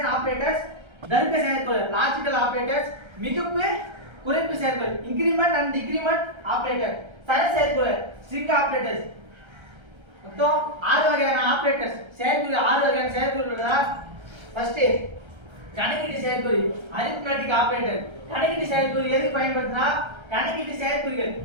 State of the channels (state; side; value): late; left; 1.3 ms